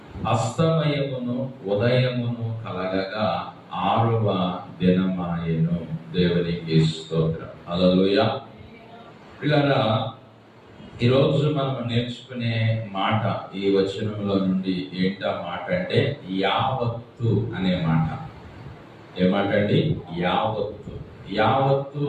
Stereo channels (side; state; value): both; identical; correlation 1.00